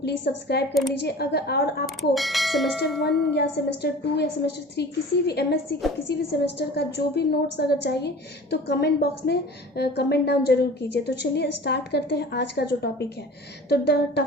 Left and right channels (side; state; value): both; normal; correlation 0.41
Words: सब्सक्राइब कर लीजिए। और आपको सेमेस्टर 1 या सेमेस्टर 2 या सेमेस्टर 3 किसी भी एमएससी के किसी भी सेमेस्टर का जो भी नोट्स अगर चाहिए तो कमेंट बॉक्स में कमेंट डाउन जरूर कीजिए। तो चलिए स्टार्ट करते हैं आज का जो टॉपिक है। तो the